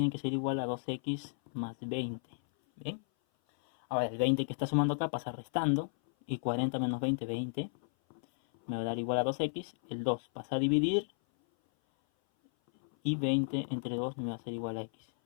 que ser igual a 2x más 20. ¿Bien? Ahora, el 20 que está sumando acá pasa restando. Y 40 menos 20, 20. Me va a dar igual a 2x. El 2 pasa a dividir. Y 20 entre 2 me va a ser igual a x.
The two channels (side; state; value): right; silent; 55 dB below the other